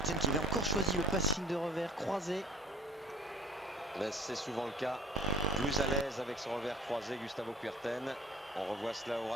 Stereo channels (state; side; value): normal; both; correlation 0.46